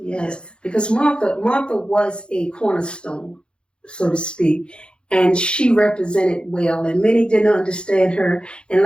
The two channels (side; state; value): right; late; 0.054 ms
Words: Because Martha was a cornerstone, so to speak. And she represented well, and many didn't understand her. And